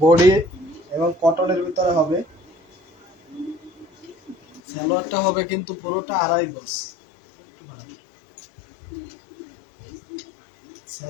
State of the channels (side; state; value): right; drops out; at 4.6 s